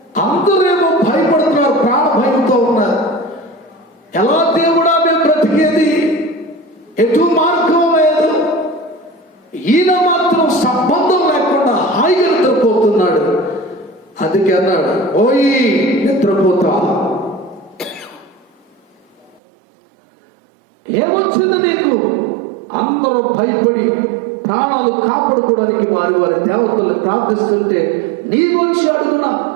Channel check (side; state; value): left; drops out; at 19.4 s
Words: అందరేమో భయపడుతున్నారు, ప్రాణ భయంతో ఉన్నారు. ఎలా దేవుడా మేము బ్రతికేది, ఎటు మార్గం లేదు. ఈయన మాత్రం సంబంధం లేకుండా హాయిగా నిద్రపోతున్నాడు. అందుకే అన్నాడు, ఓయి నిద్రపోతా, ఏమొచ్చింది నీకు? అందరూ భయపడి ప్రాణాలు కాపాడుకోవడానికి వారి వారి దేవతల్ని ప్రార్థిస్తుంటే నీవొచ్చి అడుగున